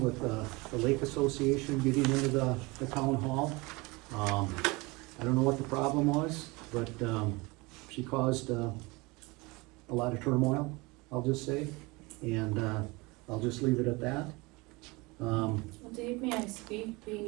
with the Lake Association getting into the town hall. I don't know what the problem was, but she caused a lot of turmoil, I'll just say, and I'll just leave it at that. Well, Dave, may I speak, being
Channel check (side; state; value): left; quieter; 24.8 dB